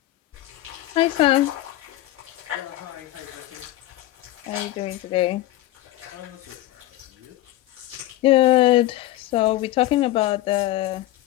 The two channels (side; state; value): right; quieter; 15.8 dB